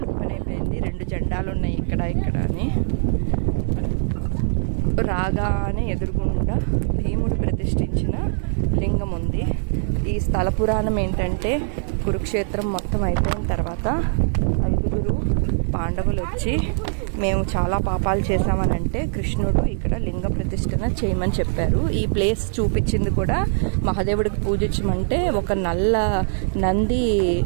ఓపెన్ అయిపోయింది. 2 జెండాలు ఉన్నాయి ఇక్కడ అని. రాగానే ఎదురుగుండా భీముడు ప్రతిష్ఠించిన లింగం ఉంది. ఈ స్థల పురాణం ఏంటంటే, కురుక్షేత్రం మొత్తం అయిపోయిన తర్వాత 5 పాండవులు వచ్చి మేము చాలా పాపాలు చేశామని అంటే కృష్ణుడు ఇక్కడ లింగ ప్రతిష్ఠన చేయమని చెప్పారు. ఈ ప్లేస్ చూపించింది కూడా మహాదేవుడికి పూజించమంటే ఒక నల్ల నంది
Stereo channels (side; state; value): left; silent; digital silence